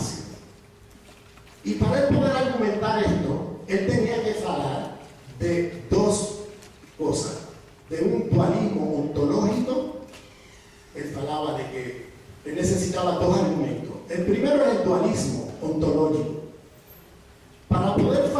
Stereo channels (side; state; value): both; identical; correlation 1.00